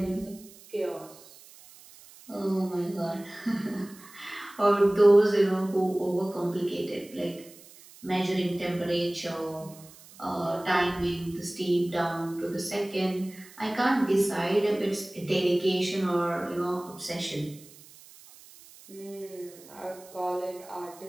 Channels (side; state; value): right; noise; hiss, 22 dB below the sound